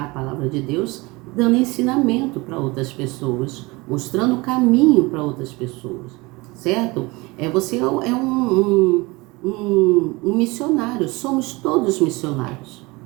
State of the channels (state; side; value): quieter; left; 23.9 dB